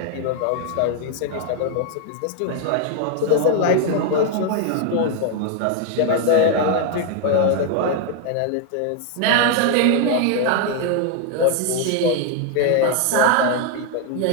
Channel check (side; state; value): both; different; correlation 0.00